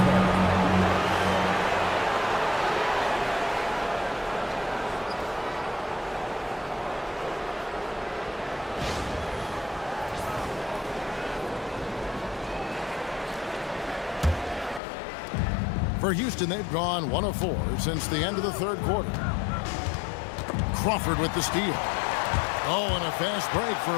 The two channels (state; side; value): drops out; right; at 14.8 s